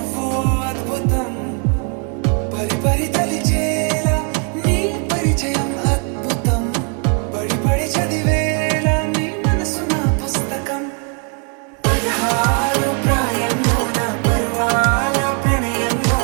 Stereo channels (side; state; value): left; quieter; 39.7 dB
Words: అద్భుతం పరి పరి తలిచేలా నీ పరిచయం అద్భుతం పడి పడి చదివేలా నీ మనసు నా పుస్తకం 16 ప్రాయంలోన పర్వాల